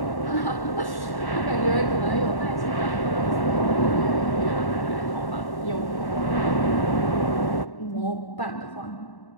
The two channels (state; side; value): late; right; 1.1 ms